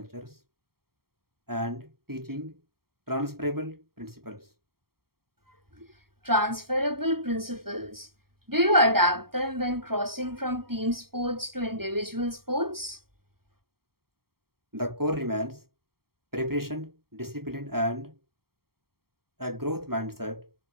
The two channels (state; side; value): late; left; 0.94 ms